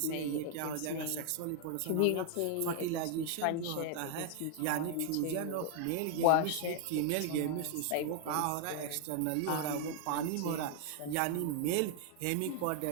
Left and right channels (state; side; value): different; both; correlation 0.00